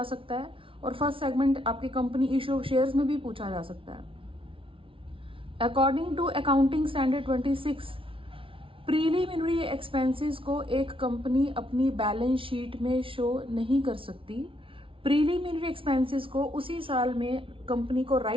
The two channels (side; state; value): left; late; 0.25 ms